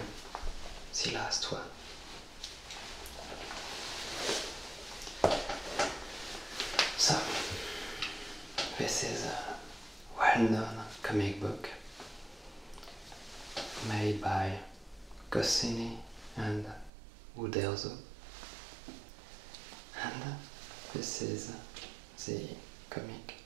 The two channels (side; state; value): left; drops out; at 16.9 s